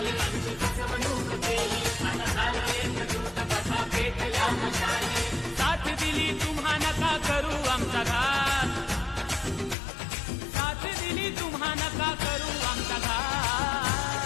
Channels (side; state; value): right; drops out; at 9.8 s